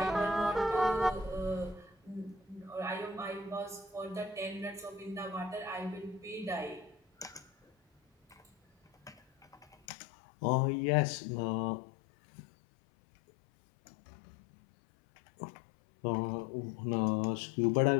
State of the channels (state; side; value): drops out; right; at 9.8 s